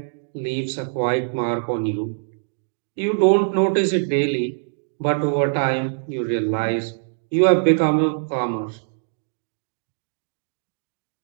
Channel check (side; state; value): left; silent; digital silence